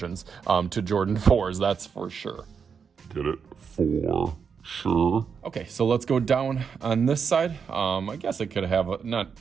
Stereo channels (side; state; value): left; quieter; 6.4 dB